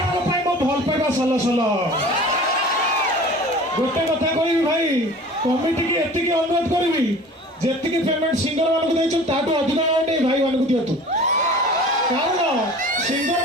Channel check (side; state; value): both; normal; correlation 0.42